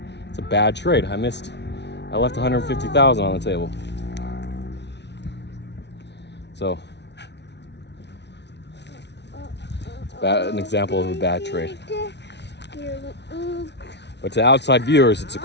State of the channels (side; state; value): right; late; 0.50 ms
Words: It's a bad trade. I left 150,000 on the table. So it's an example of a bad trade. But to outside viewers, it's a